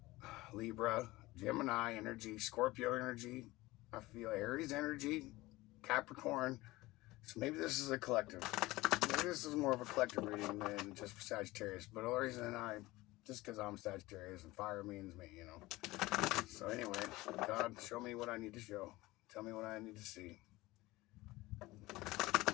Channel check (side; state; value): right; quieter; 19.6 dB